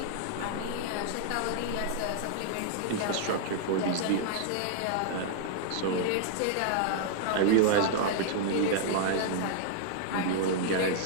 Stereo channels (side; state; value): both; different; correlation -0.01